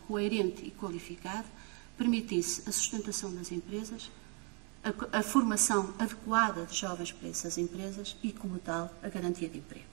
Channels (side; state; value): left; quieter; 35.9 dB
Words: coerente e qualificado, permitisse a sustentação das empresas, a formação adequada de jovens para essas empresas e, como tal, a garantia de emprego.